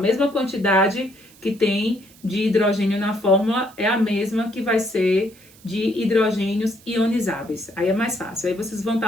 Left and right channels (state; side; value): noise; right; hiss, 25 dB below the sound